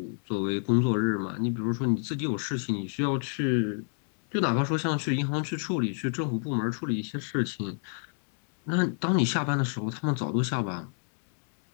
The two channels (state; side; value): silent; right; 58 dB below the other